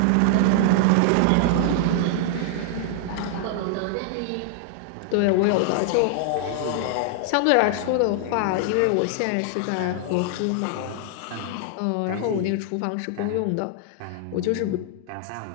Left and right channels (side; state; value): both; different; correlation 0.00